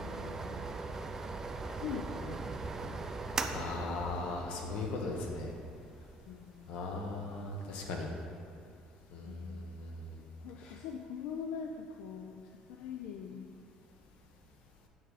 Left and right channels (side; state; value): both; normal; correlation 0.53